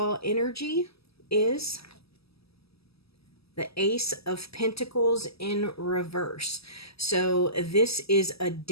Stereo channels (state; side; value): late; right; 0.77 ms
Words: energy is the Ace of Pentacles in reverse. So this is a